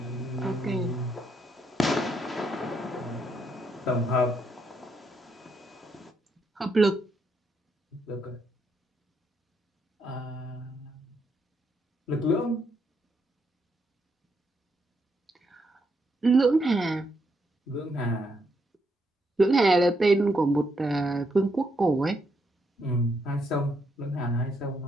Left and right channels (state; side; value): normal; both; correlation 0.77